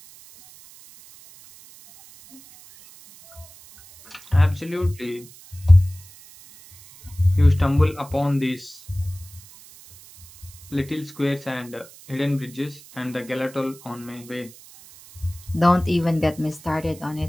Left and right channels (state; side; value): noise; right; hiss, 21 dB below the sound